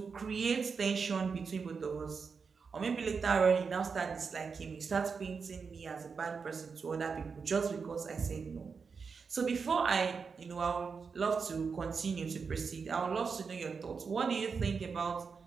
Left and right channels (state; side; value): quieter; left; 5.4 dB